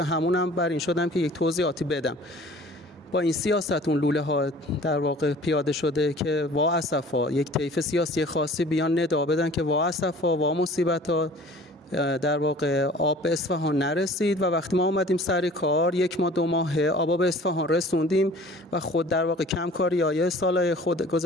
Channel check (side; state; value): both; normal; correlation 0.47